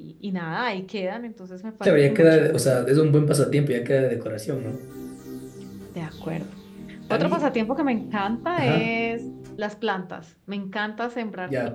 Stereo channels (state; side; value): identical; both; correlation 1.00